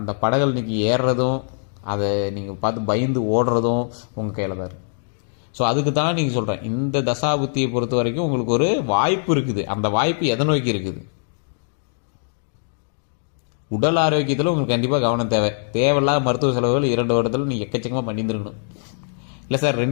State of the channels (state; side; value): silent; right; digital silence